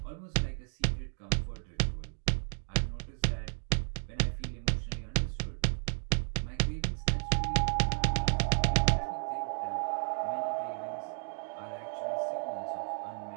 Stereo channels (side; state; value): left; silent; digital silence